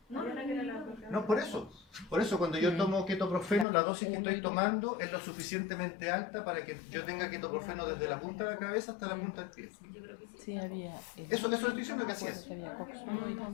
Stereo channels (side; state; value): right; drops out; at 3.7 s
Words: No, Yo no, era que era la No, por eso cuando yo tomo ketoprofeno, la dosis que Uno estoy y tomando es lo suficientemente alta para que yo tenga ketoprofeno desde la punta de la cabeza hasta la punta del pie. yo creo que sí. Sí, había. Eso estoy diciendo que así es. Había coxuno y